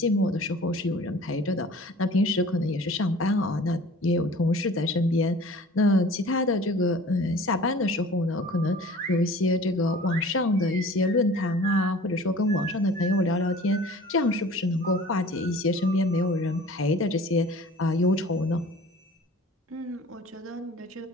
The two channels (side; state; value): both; normal; correlation 0.45